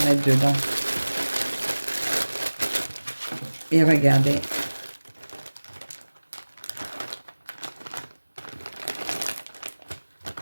mettre dedans. Et regardez.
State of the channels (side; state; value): both; inverted; correlation -1.00